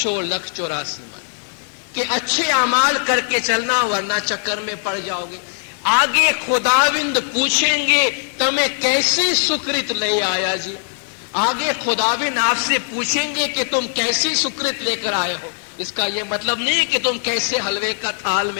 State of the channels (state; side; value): silent; right; digital silence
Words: لکھ 84 من، کہ اچھے اعمال کر کے چلنا ورنہ چکر میں پڑ جاؤ گے۔ آگے خداوند پوچھیں گے تمہیں کیسی سکرت لے آیا جی، آگے خداوند آپ سے پوچھیں گے کہ تم کیسی سکرت لے کر آئے ہو۔ اس کا یہ مطلب نہیں کہ تم کیسے حلوے کا تھال